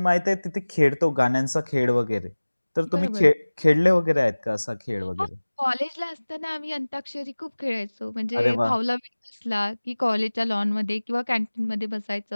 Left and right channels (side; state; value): both; inverted; correlation -1.00